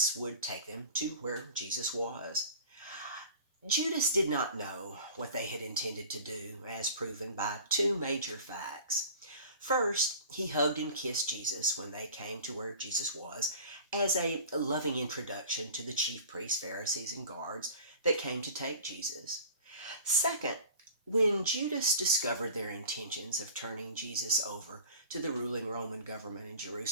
would take them to where Jesus was. Judas did not know what they had intended to do, as proven by two major facts. First, he hugged and kissed Jesus when they came to where Jesus was, as a loving introduction to the chief priests, Pharisees, and guards that came to take Jesus. Second, when Judas discovered their intentions of turning Jesus over to the ruling Roman government in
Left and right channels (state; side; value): inverted; both; correlation -0.41